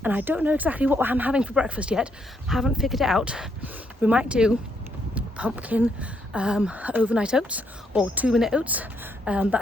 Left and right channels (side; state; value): both; normal; correlation 0.75